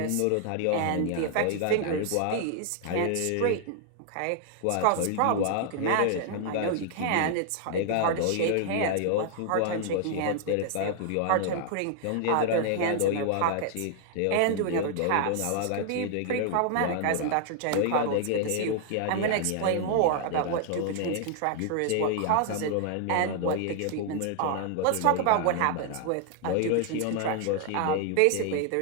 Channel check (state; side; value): different; both; correlation 0.00